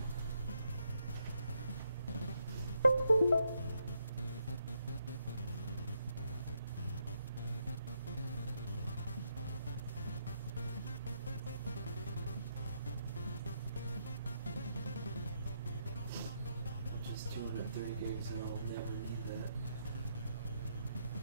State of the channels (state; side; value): inverted; both; correlation -0.78